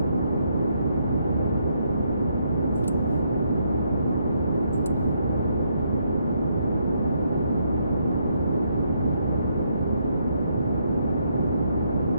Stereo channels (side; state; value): both; inverted; correlation -0.75